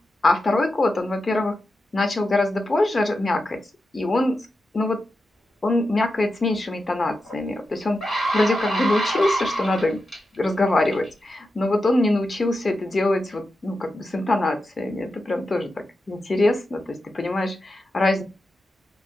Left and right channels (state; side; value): normal; both; correlation 0.90